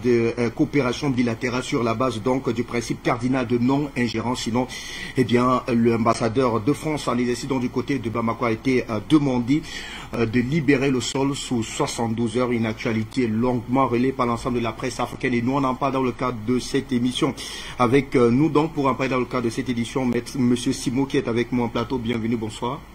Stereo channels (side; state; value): both; identical; correlation 1.00